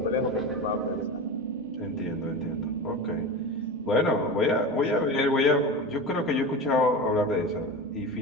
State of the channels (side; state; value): both; normal; correlation 0.27